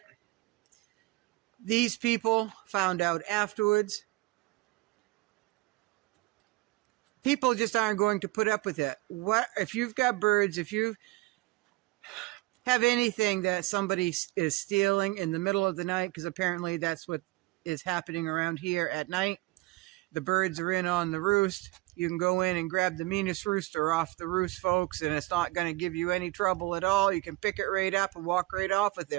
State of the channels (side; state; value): left; quieter; 21.2 dB